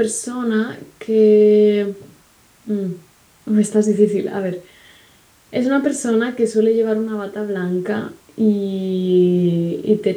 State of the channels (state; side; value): identical; both; correlation 1.00